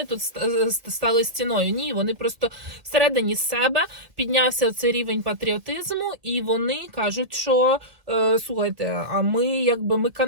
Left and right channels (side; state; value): left; late; 1.7 ms